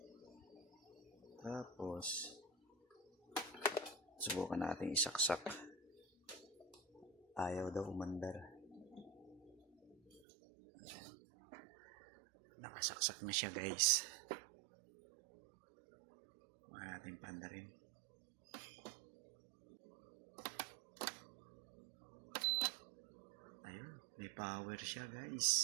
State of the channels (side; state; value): left; drops out; at 10.2 s